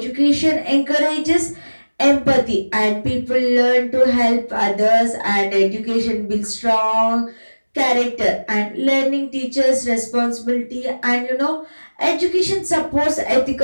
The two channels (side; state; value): both; inverted; correlation -1.00